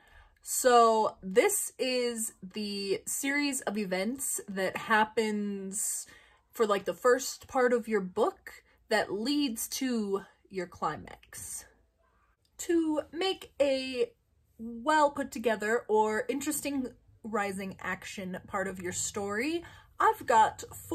So this is the series of events that happens for like the first part of your book that leads to your climax. To make a well put together or interesting rising action part of your story, I've got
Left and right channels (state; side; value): identical; both; correlation 1.00